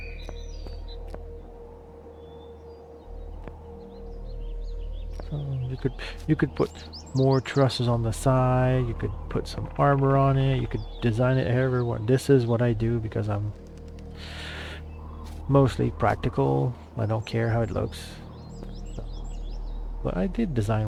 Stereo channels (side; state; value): both; identical; correlation 1.00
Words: So you could put more trusses on the side, you could put some armor on it, you could design it however you want. This is what I do because I'm mostly practical. I don't care how it looks. So, but I did